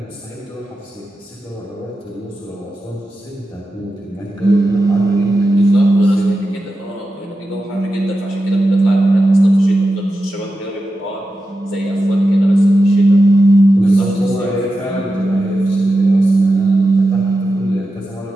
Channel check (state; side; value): normal; both; correlation 0.91